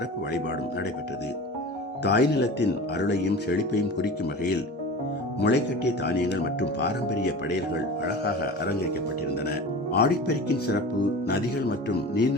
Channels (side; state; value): both; normal; correlation 0.34